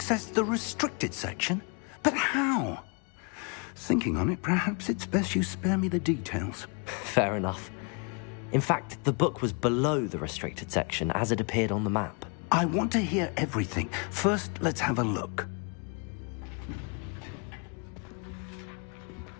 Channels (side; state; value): right; quieter; 35.7 dB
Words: the restricted section? But how? Thinking on it, perhaps it's best you spare me the details. Fair enough. In fact, the book was below the restricted section as it appeared on the map. I want to hear everything. First, let's have a look.